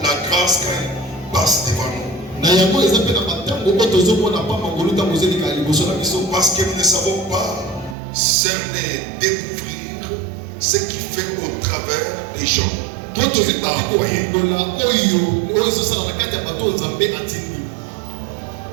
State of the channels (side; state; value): left; drops out; at 8.0 s